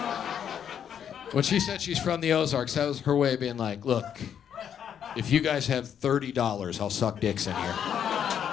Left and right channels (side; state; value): right; quieter; 8.7 dB